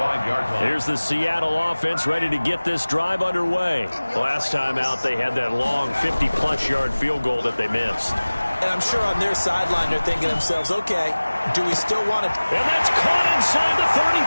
line. Here's the Seattle offense ready to get this drive underway. Last time out, they had that long 50-plus yard field goal that they missed. And I'm sure on their sideline they're thinking to themselves, okay, do we still want it? And that's caught inside the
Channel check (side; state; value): both; inverted; correlation -1.00